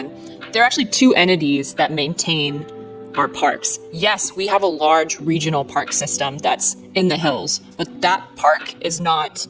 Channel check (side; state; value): both; identical; correlation 1.00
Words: There are actually two entities that maintain our parks. Yes, we have a large regional park system that's in the hills, but that park is not